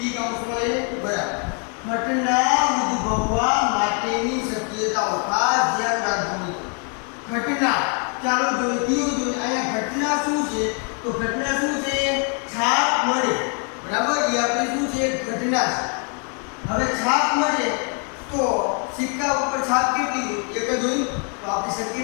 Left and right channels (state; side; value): quieter; right; 39.4 dB